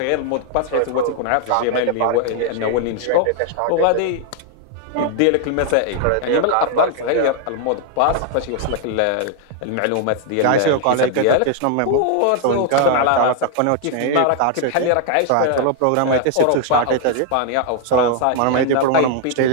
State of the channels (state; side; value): different; both; correlation 0.00